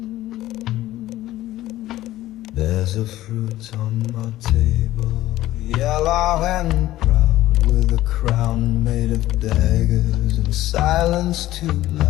There's There's a fruit on my table, yellow and proud, with a crown made of daggers and silence too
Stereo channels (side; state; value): right; quieter; 15.2 dB